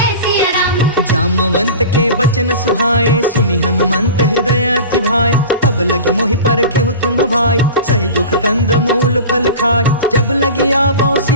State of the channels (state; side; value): inverted; both; correlation -0.34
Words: सिया राम। जामवंत के बचन सुहाए, सुनि हनुमंत हृदय अति भाए। तब लगी मोहि परखे तुम भाई, सही दुख कंद मूल फल खाए। जब लगी आवो